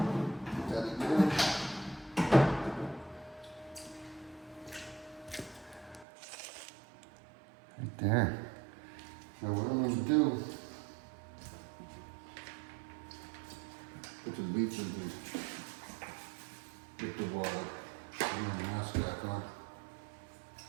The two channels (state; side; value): drops out; left; at 6.1 s